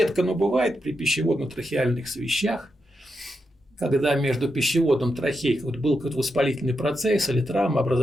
но бывает при пищеводно-трахеальных свищах, когда между пищеводом и трахеей был какой-то воспалительный процесс или травма,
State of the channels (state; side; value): normal; both; correlation 0.85